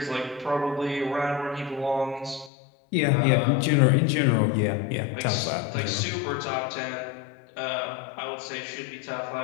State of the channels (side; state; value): right; drops out; at 2.5 s